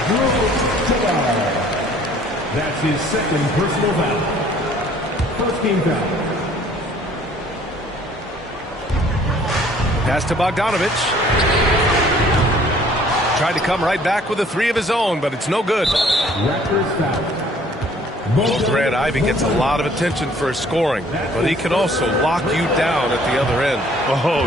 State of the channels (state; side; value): normal; both; correlation 0.57